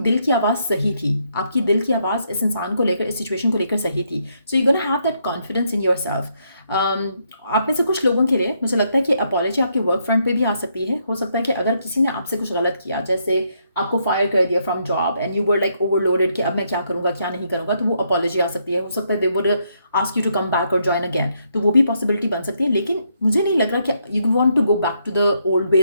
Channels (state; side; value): inverted; both; correlation -0.75